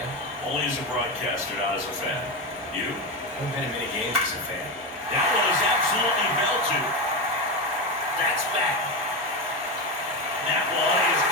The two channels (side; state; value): both; normal; correlation 0.15